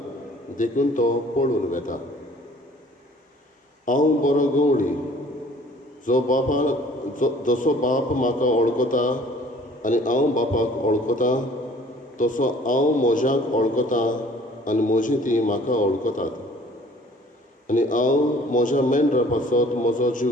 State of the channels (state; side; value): normal; both; correlation 0.53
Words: देखून तो पळून वेता. हांव बरो गवळी, जसो बाप म्हाका वळखता आनी हांव बापाक वळखता, तसो हांव म्हज्याक वळखता आनी म्हजी ती म्हाका वळखतात. आनी हांव म्हज्या मेंढरां पासत म्हजो